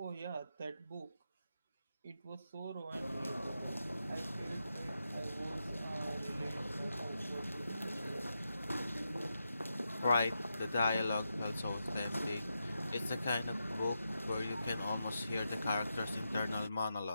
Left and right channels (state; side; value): inverted; both; correlation -0.87